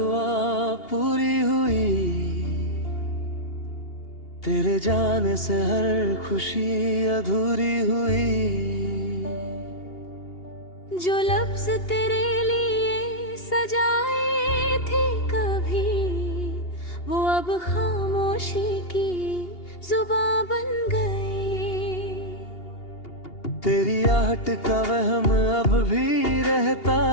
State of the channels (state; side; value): late; right; 2.8 ms